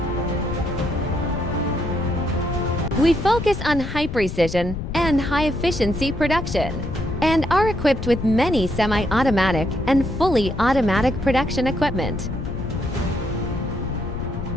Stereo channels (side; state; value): left; noise; rumble, 6 dB below the sound